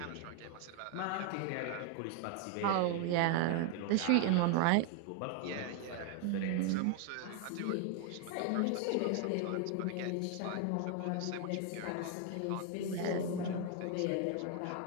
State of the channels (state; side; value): different; both; correlation 0.01